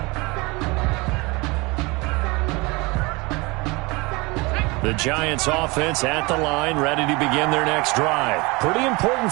The Giants offense at the line, ready to begin their next drive. Pretty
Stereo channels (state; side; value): quieter; left; 25.2 dB